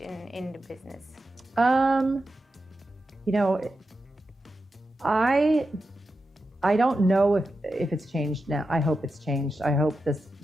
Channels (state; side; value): normal; both; correlation 0.90